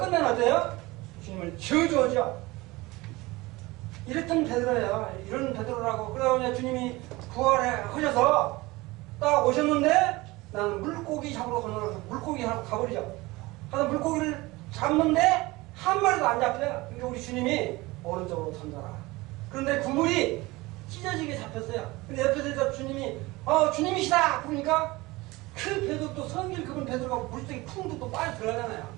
끝내는 어때요? 주님을 저주하죠. 이랬던 베드로예요. 이런 베드로라고. 그러다 주님이 부활하셔서 딱 오셨는데, 나는 물고기 잡으러 건너서 물고기 하고 가버리죠. 그래서 물고기를 잡는데 한 마리도 안 잡혀요. 그러니까 우리 주님이 오른쪽으로 던져라. 그런데 그물이 찢어지게 잡혔어요. 근데 옆에서 주님이 주님이시다 그러니까 그 베드로, 또 성길 그분 베드로가 물속에 쿵 또 빠져 들어가잖아요.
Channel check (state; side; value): quieter; left; 21.4 dB